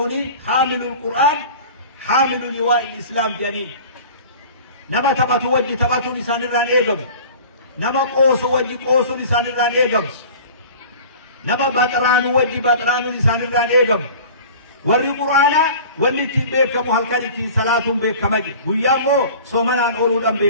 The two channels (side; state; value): both; inverted; correlation -0.41